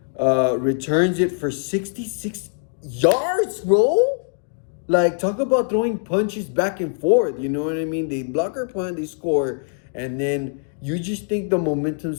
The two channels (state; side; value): silent; right; 63 dB below the other